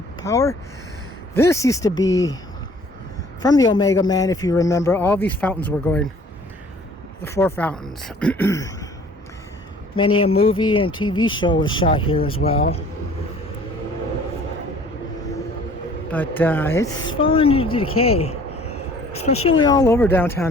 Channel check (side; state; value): both; normal; correlation 0.53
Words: Power. This used to be from the Omega Man, if you remember. All these fountains were going, the 4 fountains. Many a movie and TV show was shot here as well. But it's fallen into decay, especially all over